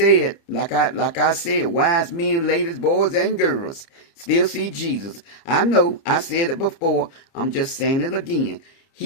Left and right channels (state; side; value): late; right; 30 ms